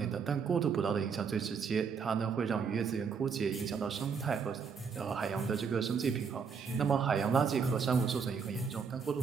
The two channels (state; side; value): quieter; left; 6.0 dB